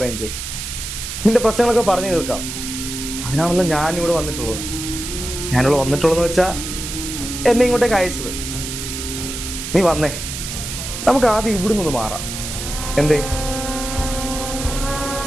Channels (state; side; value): noise; right; hiss, 7 dB below the sound